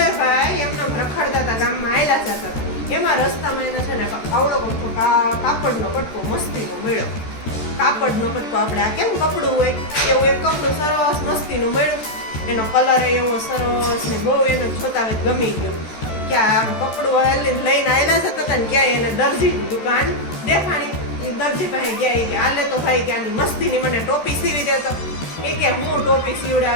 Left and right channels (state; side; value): late; right; 13 ms